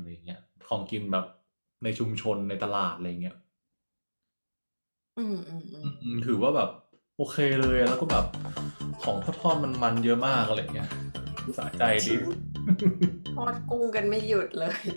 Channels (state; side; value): inverted; both; correlation -1.00